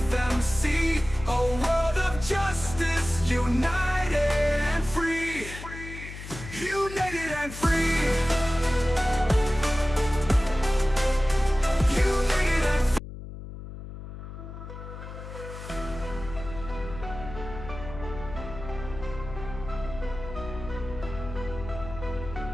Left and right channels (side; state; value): left; noise; hum, 11 dB below the sound